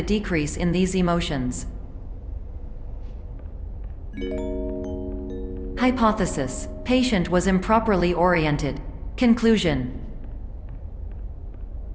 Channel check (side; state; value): both; identical; correlation 1.00